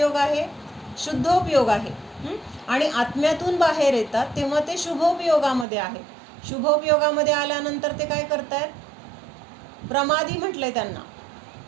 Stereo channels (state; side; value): drops out; left; at 5.7 s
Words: आहे? शुद्धोपयोग आहे. आणि आत्म्यातून बाहेर येतात तेव्हा ते शुभोपयोगामध्ये आहेत. शुभोपयोगामध्ये आल्यानंतर ते काय करतायत? प्रमादी म्हटलंय त्यांना,